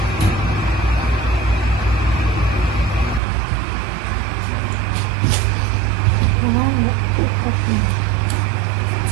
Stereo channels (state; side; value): drops out; left; at 3.2 s